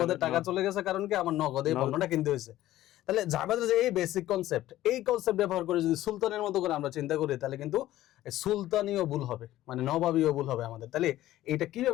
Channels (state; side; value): quieter; right; 14.6 dB